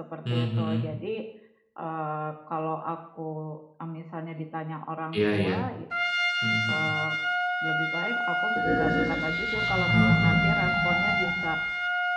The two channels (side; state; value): both; identical; correlation 1.00